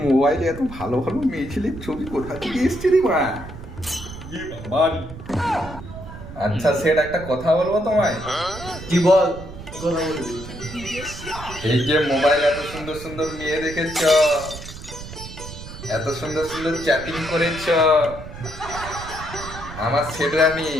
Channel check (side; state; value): right; noise; rumble, 13 dB below the sound